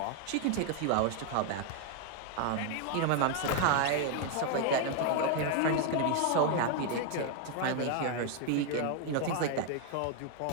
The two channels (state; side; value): different; both; correlation 0.01